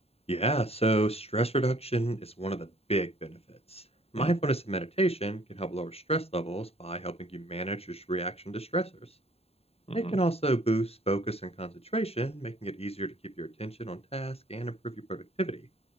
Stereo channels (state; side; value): late; right; 0.29 ms